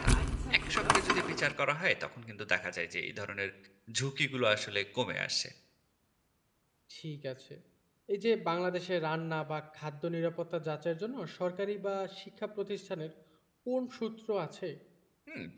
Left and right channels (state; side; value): identical; both; correlation 1.00